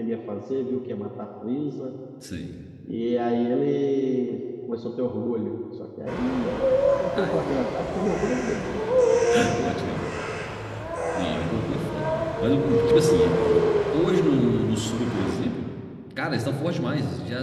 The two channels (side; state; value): both; identical; correlation 1.00